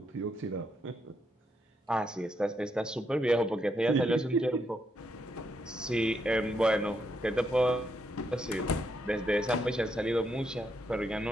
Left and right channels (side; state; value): both; normal; correlation 0.78